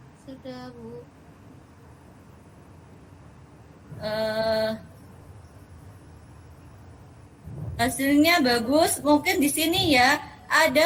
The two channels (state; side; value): identical; both; correlation 1.00